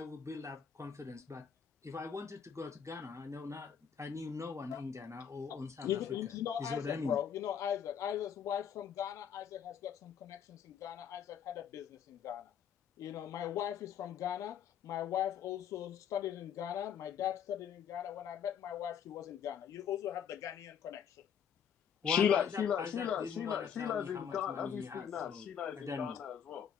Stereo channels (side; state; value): right; quieter; 8.0 dB